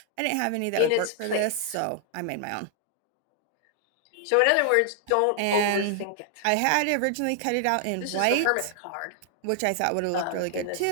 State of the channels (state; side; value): different; both; correlation 0.00